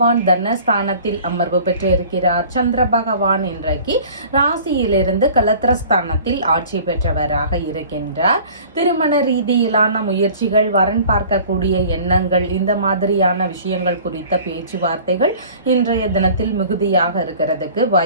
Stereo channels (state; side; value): inverted; both; correlation -0.46